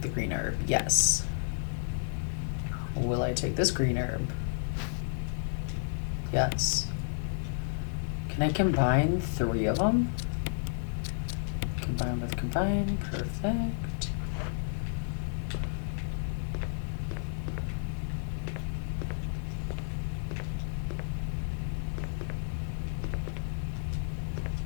the green herb? Yes. Will I take this green herb? Yes. Can I combine 3 of them? Combine with combine, perfect.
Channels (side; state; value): right; silent; digital silence